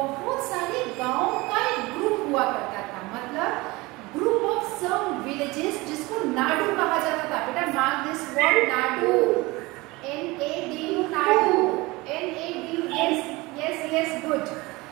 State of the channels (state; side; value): quieter; left; 22.5 dB